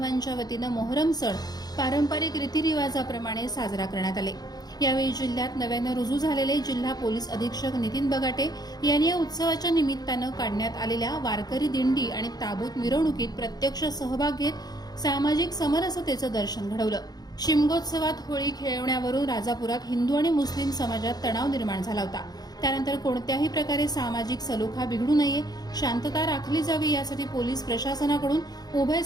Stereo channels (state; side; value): late; right; 0.19 ms